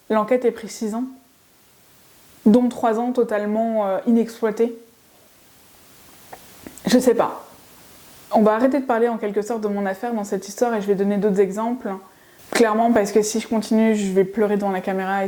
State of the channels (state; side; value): identical; both; correlation 1.00